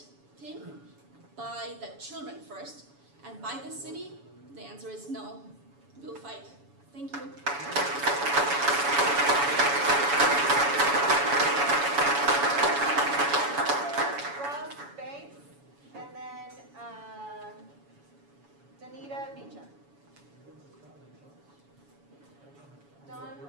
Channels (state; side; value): late; left; 7.1 ms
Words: thing by the children first, and by the city. The answer is no. We'll fight. Thank you. Ross Banks, and then Danita Beecher. Don